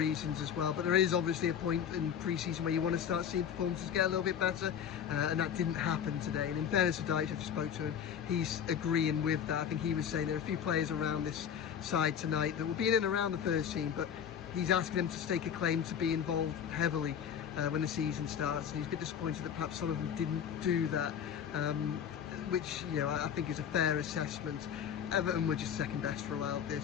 as well, but there is obviously a point in pre-season where you want to start seeing performances get a little bit better, and that didn't happen today. And in fairness to Dyche, I just spoke to him, he's agreeing with that. I think he was saying there are a few players around this side tonight that will be in and around the first team, but he's asking them to stake a claim to be involved heavily when the season starts, and he's a bit disappointed that perhaps some of them didn't do that, which, you know, I think is a fair assessment. Everton were just second best throughout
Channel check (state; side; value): quieter; right; 8.4 dB